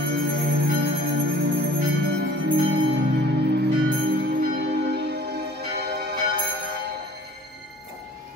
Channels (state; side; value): normal; both; correlation 0.49